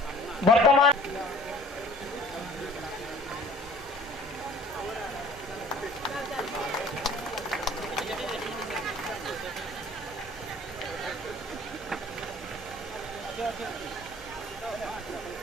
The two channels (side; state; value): both; normal; correlation 0.50